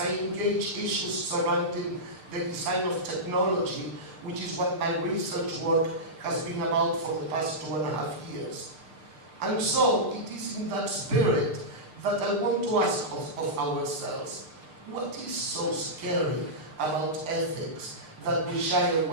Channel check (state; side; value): late; left; 6.5 ms